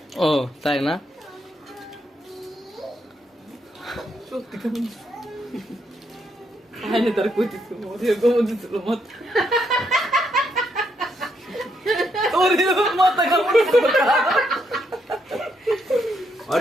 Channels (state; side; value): normal; both; correlation 0.76